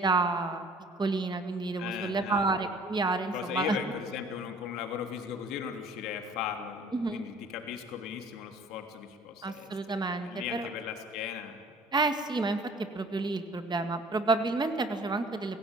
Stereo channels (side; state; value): both; normal; correlation 0.52